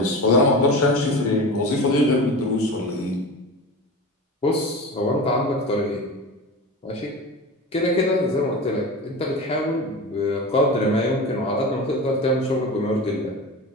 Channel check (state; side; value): normal; both; correlation 0.30